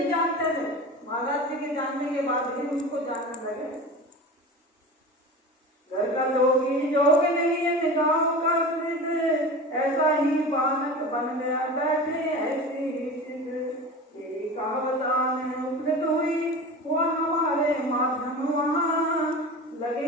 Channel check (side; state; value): both; normal; correlation 0.32